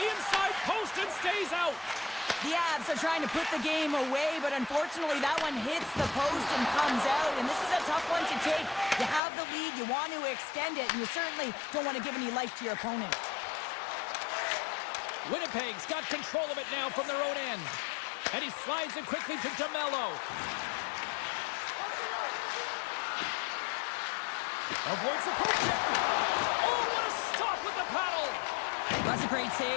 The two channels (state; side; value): drops out; right; at 9.2 s